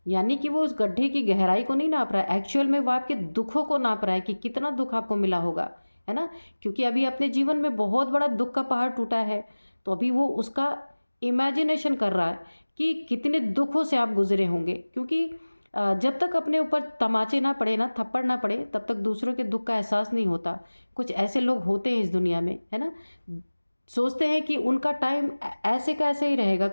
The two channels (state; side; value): inverted; both; correlation -1.00